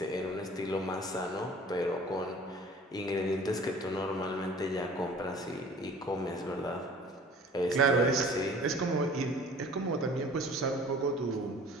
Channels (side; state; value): both; normal; correlation 0.47